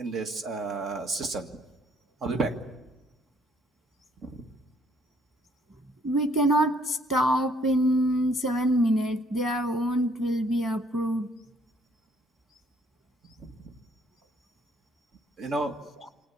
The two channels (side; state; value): both; normal; correlation 0.64